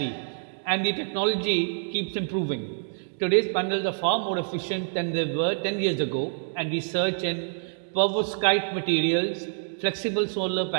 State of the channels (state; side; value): silent; left; digital silence